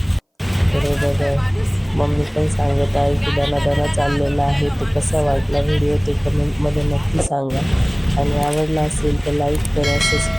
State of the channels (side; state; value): both; identical; correlation 1.00